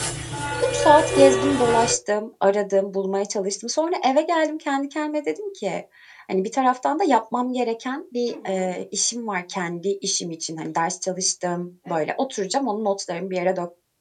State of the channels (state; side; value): identical; both; correlation 1.00